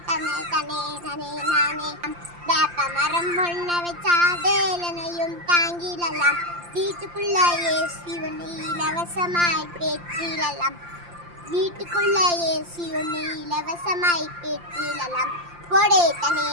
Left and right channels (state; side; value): late; left; 5.8 ms